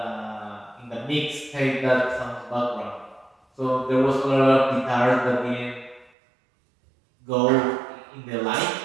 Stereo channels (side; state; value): left; drops out; at 6.1 s